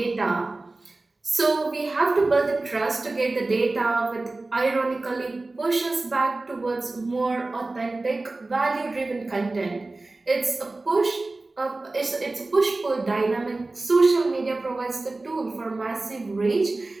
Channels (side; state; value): left; quieter; 3.2 dB